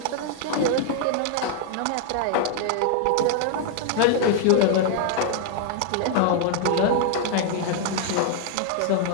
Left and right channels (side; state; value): both; different; correlation 0.00